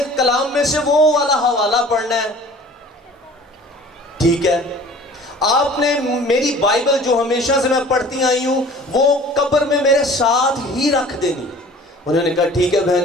کلام میں سے وہ والا حوالہ پڑھنا ہے، ٹھیک ہے؟ آپ نے میری بائبل جو ہمیشہ سے میں پڑھتی آئی ہوں وہ قبر میں میرے ساتھ ہی رکھ دینی۔ انہوں نے کہا ٹھیک ہے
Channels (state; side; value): normal; both; correlation 0.47